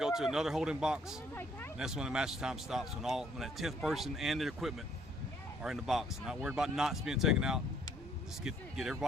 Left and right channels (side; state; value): both; normal; correlation 0.65